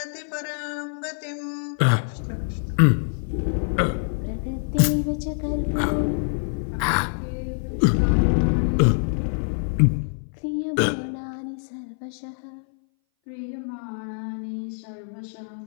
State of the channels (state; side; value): silent; right; 59 dB below the other